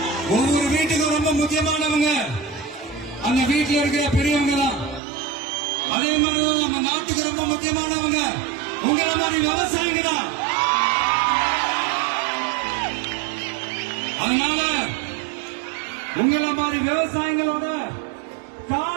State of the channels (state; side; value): drops out; left; at 5.0 s